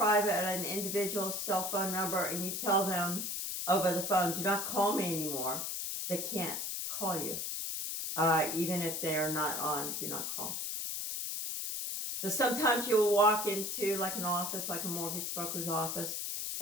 individual cell phone number and you tell them over the phone, do not call me anymore, they can't call you, even if they are not on do not call. So sometimes you'll walk into like an office, like a mortgage broker's office,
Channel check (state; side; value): noise; left; hiss, 3 dB below the sound